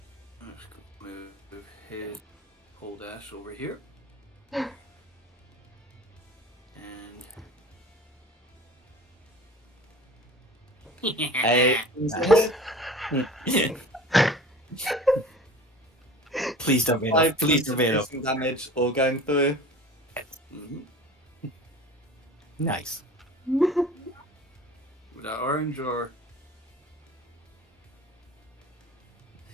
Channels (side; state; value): both; normal; correlation 0.40